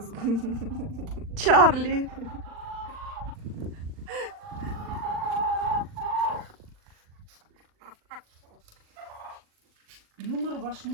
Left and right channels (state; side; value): late; left; 39 ms